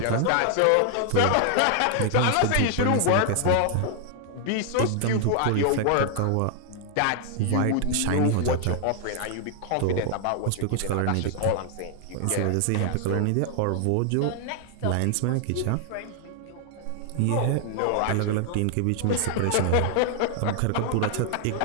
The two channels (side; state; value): both; different; correlation 0.00